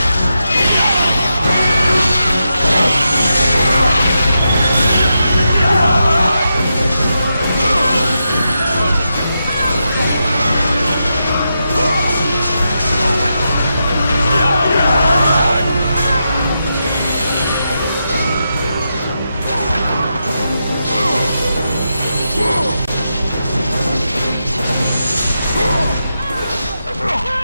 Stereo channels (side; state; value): both; inverted; correlation -0.86